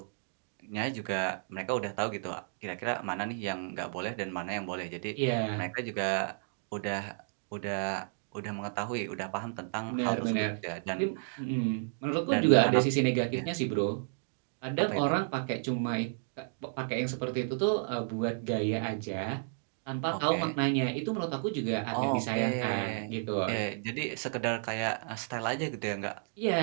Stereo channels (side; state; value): left; silent; digital silence